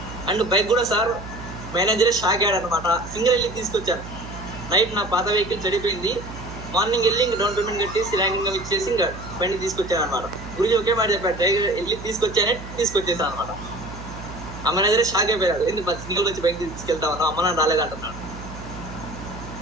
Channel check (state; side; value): noise; right; hum, 12 dB below the sound